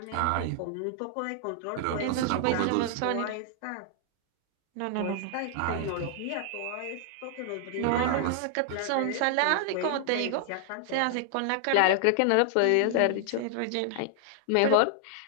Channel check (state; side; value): different; both; correlation 0.00